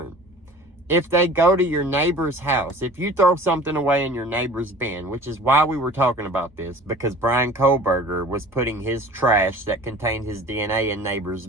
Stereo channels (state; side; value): normal; both; correlation 0.44